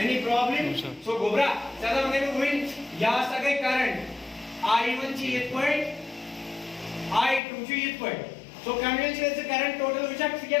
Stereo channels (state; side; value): drops out; right; at 7.4 s